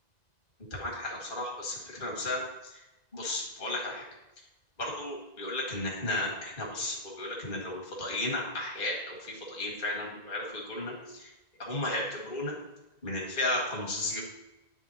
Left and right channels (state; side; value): late; right; 1.9 ms